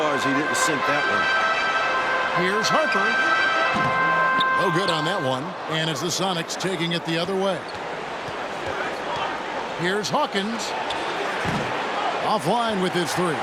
he didn't sink that one. Here's Harper. No good on that one. And it's the Sonics taking it the other way. Here's Hawkins. Offline with his 3.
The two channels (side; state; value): both; identical; correlation 1.00